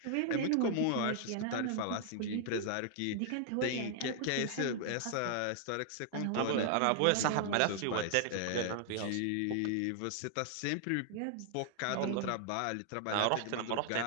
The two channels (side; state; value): both; different; correlation 0.00